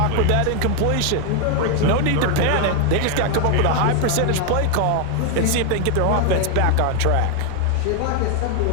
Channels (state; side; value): different; both; correlation 0.00